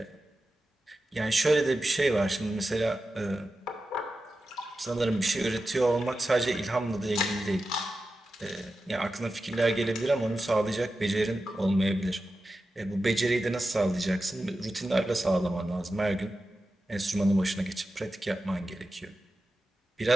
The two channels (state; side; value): normal; both; correlation 0.92